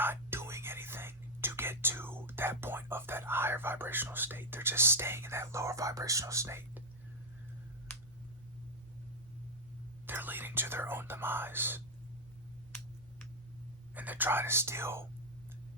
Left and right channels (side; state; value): both; normal; correlation -0.01